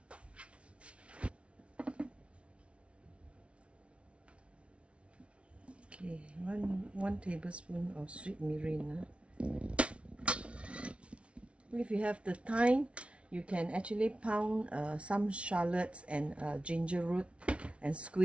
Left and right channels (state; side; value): late; left; 0.061 ms